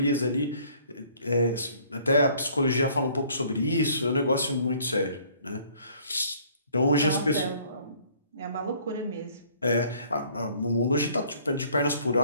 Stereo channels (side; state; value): both; inverted; correlation -0.58